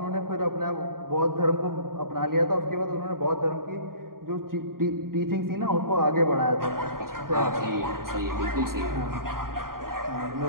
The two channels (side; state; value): left; late; 0.92 ms